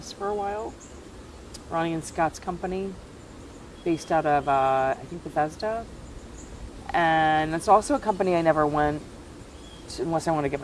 for a while. Ronnie and Scott's company, based out of, I think, Bethesda. And it's also a company I never went to unless I want to get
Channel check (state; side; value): identical; both; correlation 1.00